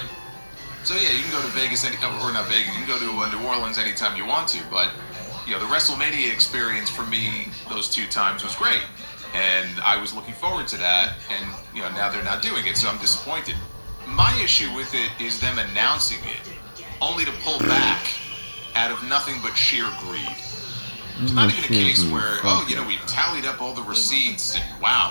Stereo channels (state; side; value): inverted; both; correlation -1.00